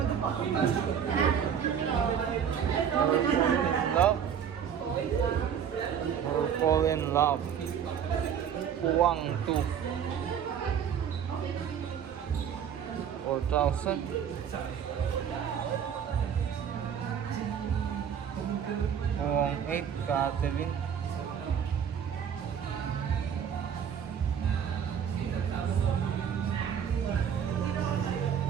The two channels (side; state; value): left; quieter; 8.2 dB